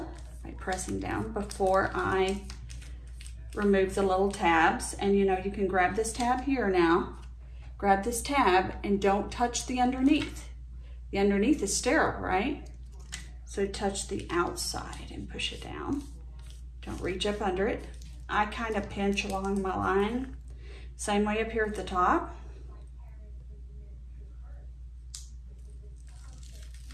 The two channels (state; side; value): identical; both; correlation 1.00